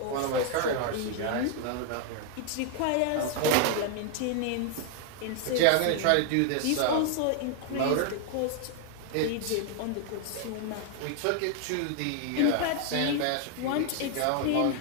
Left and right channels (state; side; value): different; both; correlation 0.00